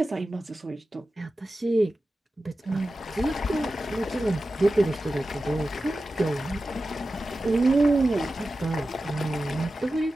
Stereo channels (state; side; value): normal; both; correlation 0.93